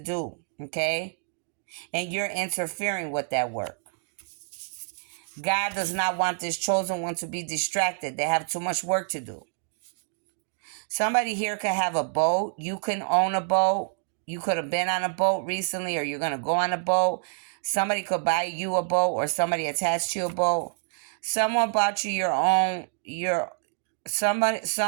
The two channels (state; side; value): silent; left; digital silence